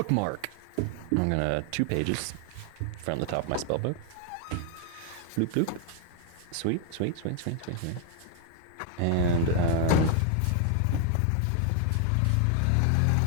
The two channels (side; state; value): both; different; correlation 0.00